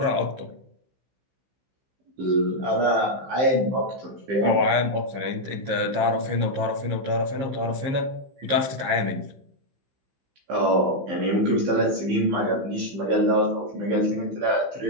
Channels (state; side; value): late; left; 15 ms